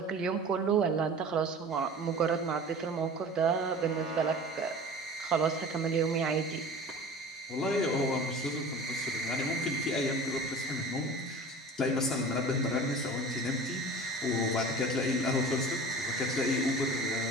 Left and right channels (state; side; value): normal; both; correlation 0.39